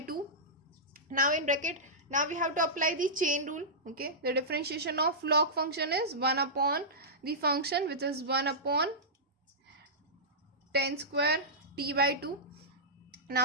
Now in bracket, now we have to apply the chain rule. Okay, the differentiation of log function is 1 upon the function which is 1 upon tan square t by 2.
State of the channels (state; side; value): normal; both; correlation -0.14